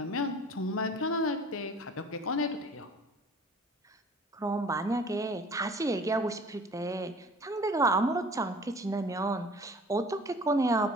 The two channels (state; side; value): normal; both; correlation 0.47